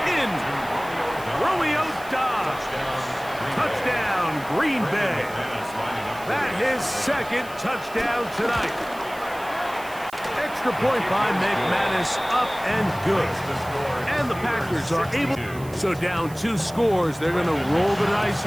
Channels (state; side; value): noise; right; hiss, 19 dB below the sound